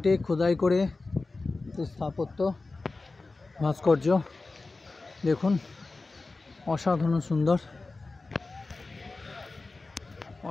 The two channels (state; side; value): quieter; right; 3.6 dB